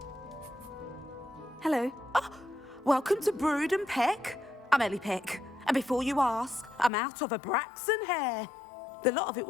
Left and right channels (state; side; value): drops out; right; at 6.9 s